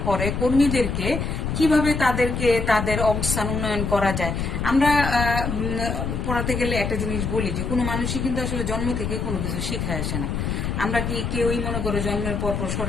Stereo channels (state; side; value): noise; left; rumble, 2 dB below the sound